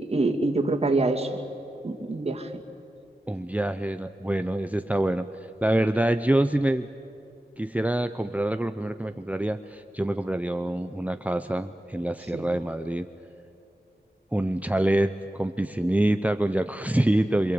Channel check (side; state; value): both; normal; correlation 0.92